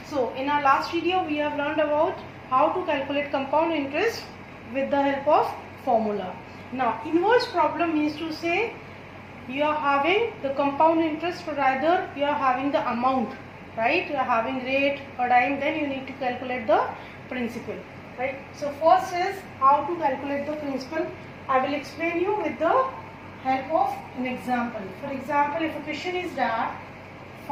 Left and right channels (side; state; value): both; identical; correlation 1.00